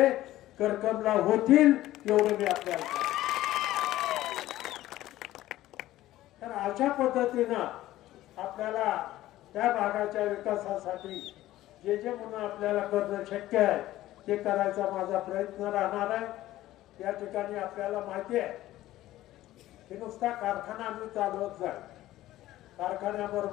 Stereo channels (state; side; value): quieter; right; 15.1 dB